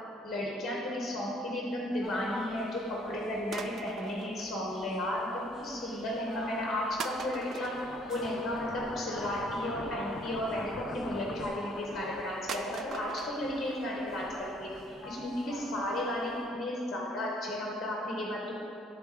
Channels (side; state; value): both; normal; correlation 0.61